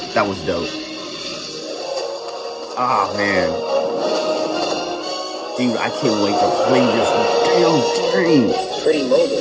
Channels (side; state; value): both; identical; correlation 1.00